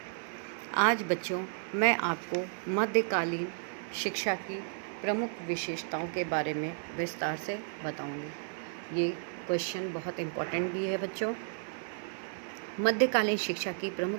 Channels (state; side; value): silent; left; digital silence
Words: आज बच्चों मैं आपको मध्यकालीन शिक्षा की प्रमुख विशेषताओं के बारे में विस्तार से बताऊंगी। ये क्वेश्चन बहुत इम्पोर्टेंट भी है बच्चों। मध्यकालीन शिक्षा की प्रमुख